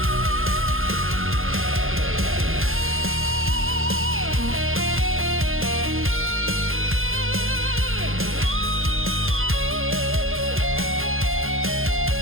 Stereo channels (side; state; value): left; late; 0.60 ms